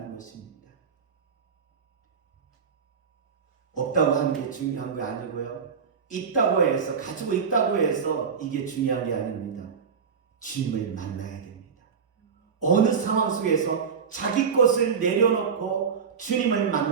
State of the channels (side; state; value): left; quieter; 6.3 dB